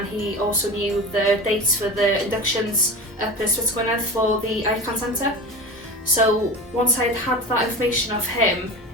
he also knew the dates for the inductions up in Ysbyty Gwynedd for the ICAN Centre. So once I'd had that information of him,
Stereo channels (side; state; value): both; normal; correlation 0.31